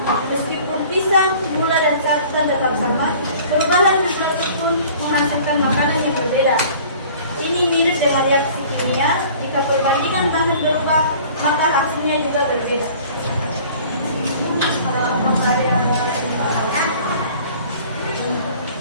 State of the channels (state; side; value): inverted; both; correlation -0.48